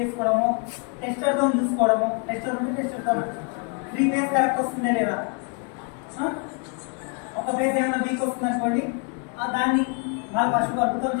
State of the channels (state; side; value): quieter; right; 37.3 dB